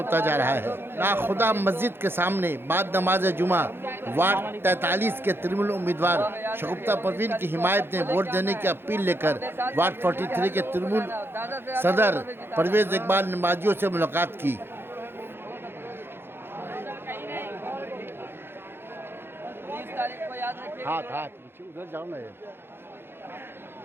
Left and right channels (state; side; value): late; left; 0.11 ms